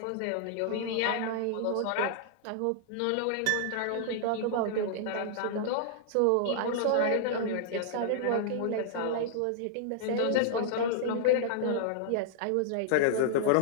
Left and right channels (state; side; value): different; both; correlation -0.01